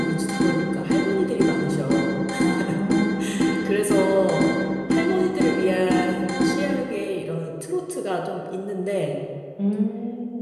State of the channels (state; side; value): identical; both; correlation 1.00